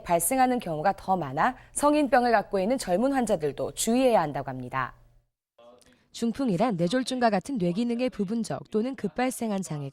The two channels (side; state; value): both; identical; correlation 1.00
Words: 발생하는 경우가 더 많아 성인병을 갖고 있는 젊은 환자들도 주의해야 한다고 합니다. 중풍이란 뇌졸중과 같은 뇌기능의 부분적 또는 급발생한